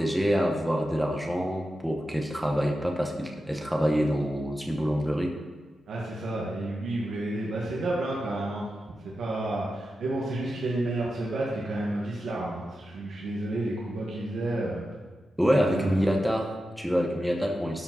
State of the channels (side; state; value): both; normal; correlation 0.91